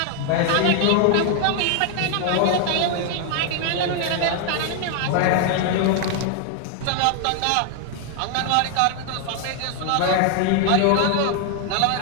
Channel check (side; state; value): both; different; correlation 0.00